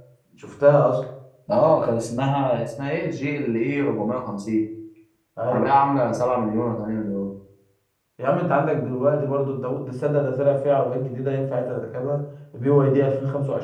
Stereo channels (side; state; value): both; identical; correlation 1.00